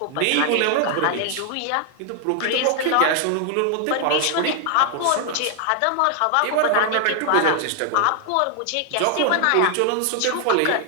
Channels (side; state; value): both; different; correlation 0.00